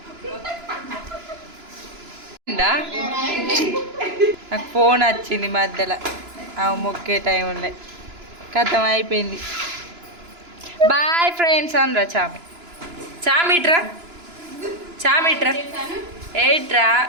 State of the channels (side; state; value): left; late; 2.9 ms